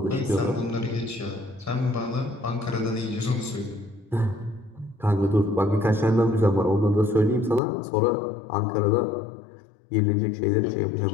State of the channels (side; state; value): right; drops out; at 7.6 s